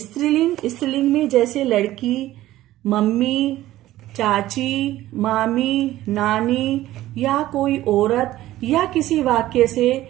में जैसे लड़की, मम्मी, चाची, मामी, नानी या कोई औरत या किसी वाक्य से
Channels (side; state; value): left; quieter; 15.1 dB